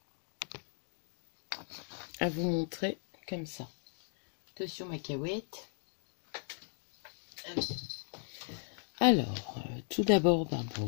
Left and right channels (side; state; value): right; silent; digital silence